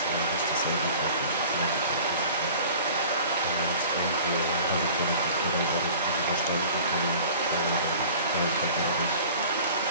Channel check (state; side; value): inverted; both; correlation -0.44